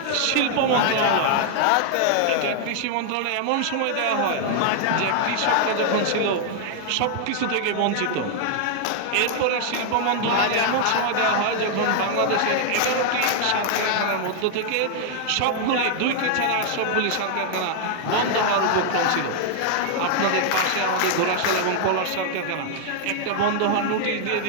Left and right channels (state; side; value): different; both; correlation 0.00